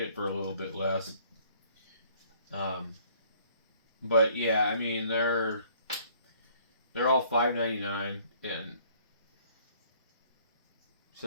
it for a little bit less. But yeah, I mean, they're all $5.99, and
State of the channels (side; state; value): both; inverted; correlation -0.60